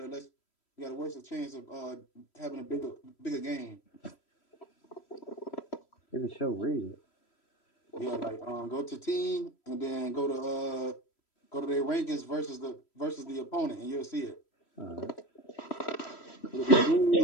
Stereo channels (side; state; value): right; late; 3.1 ms